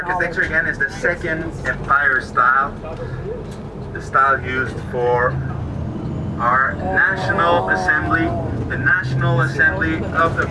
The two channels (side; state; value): both; identical; correlation 1.00